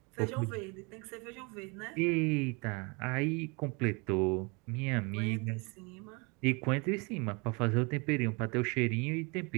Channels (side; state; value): left; quieter; 30.1 dB